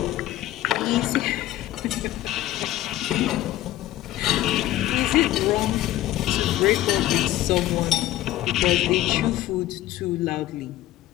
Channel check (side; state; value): right; quieter; 14.6 dB